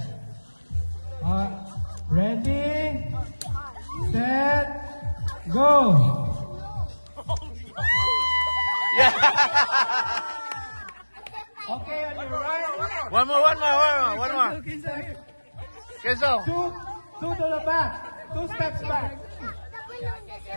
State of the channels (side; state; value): both; inverted; correlation -1.00